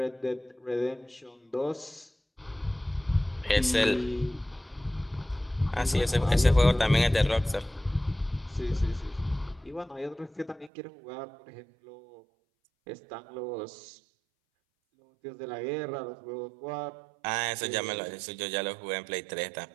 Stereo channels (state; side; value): drops out; left; at 10.7 s